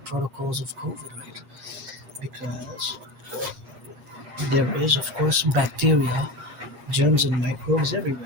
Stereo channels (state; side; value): late; left; 7.4 ms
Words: of COVID, right? Because there is, of course, bacteria, germs, and microbes